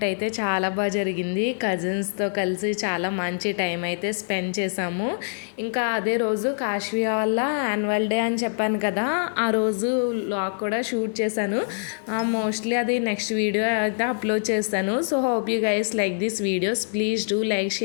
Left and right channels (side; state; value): right; silent; digital silence